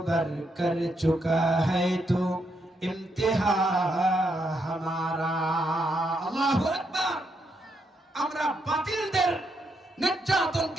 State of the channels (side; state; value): both; normal; correlation 0.79